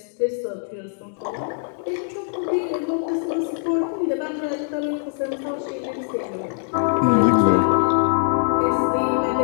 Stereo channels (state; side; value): silent; right; digital silence